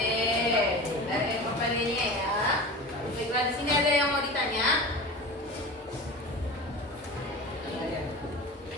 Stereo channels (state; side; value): normal; both; correlation 0.32